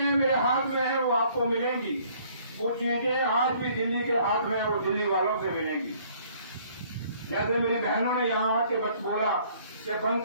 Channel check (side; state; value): both; inverted; correlation -0.59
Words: मेरे हाथ में है वो आपको मिलेंगी। वो चीजें आज भी दिल्ली के हाथ में है, वो दिल्ली वालों से मिलेंगी। जैसे मेरी बहनों ने यहाँ आके बस बोला कि